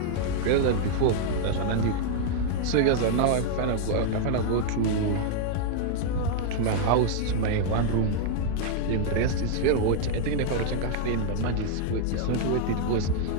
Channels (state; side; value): different; both; correlation -0.01